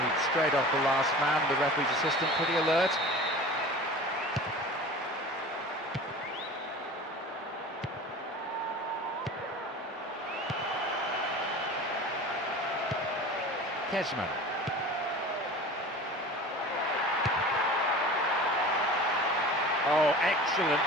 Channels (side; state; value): both; normal; correlation 0.38